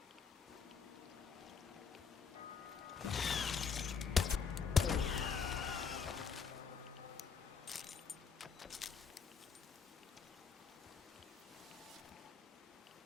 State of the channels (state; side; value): quieter; right; 6.1 dB